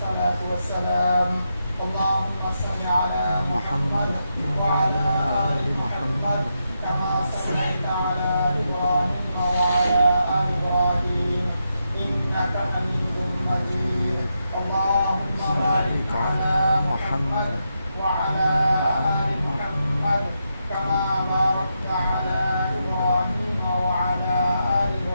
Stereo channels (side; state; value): both; inverted; correlation -0.84